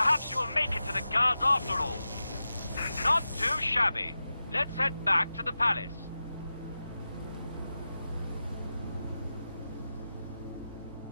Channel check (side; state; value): both; inverted; correlation -0.92